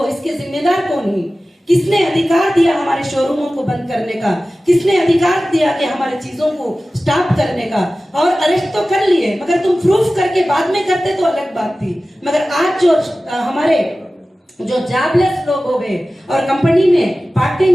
इसके जिम्मेदार कौन है? किसने अधिकार दिया हमारे शोरूमों को बंद करने का? किसने अधिकार दिया कि हमारे चीजों को स्टॉप करने का? और अरेस्ट तो कर लिए, मगर तुम प्रूफ करके बाद में करते तो अलग बात थी। मगर आज जो हमारे जो जॉबलेस लोग हो गए और कंपनी में पार्ट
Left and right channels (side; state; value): both; normal; correlation 0.96